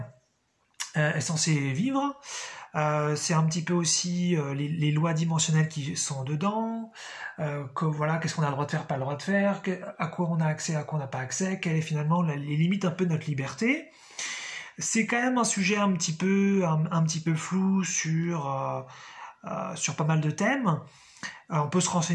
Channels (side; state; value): both; identical; correlation 1.00